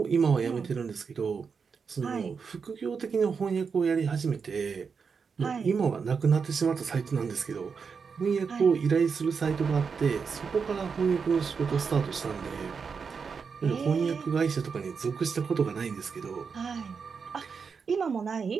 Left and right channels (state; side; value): quieter; left; 5.7 dB